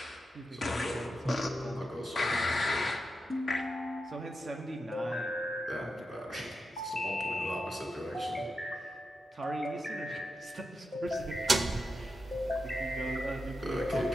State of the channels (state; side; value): normal; both; correlation 0.88